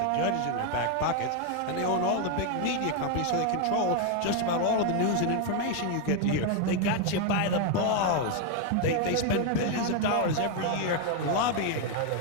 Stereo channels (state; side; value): different; both; correlation 0.01